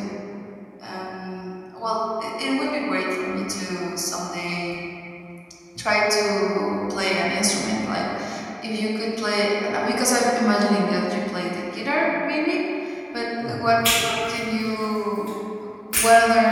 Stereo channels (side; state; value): both; identical; correlation 1.00